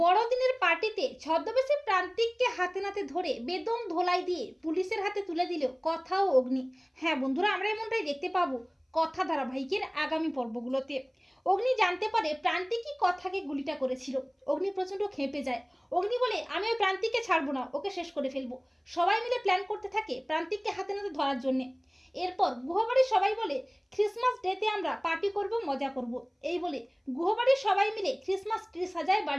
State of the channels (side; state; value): both; identical; correlation 1.00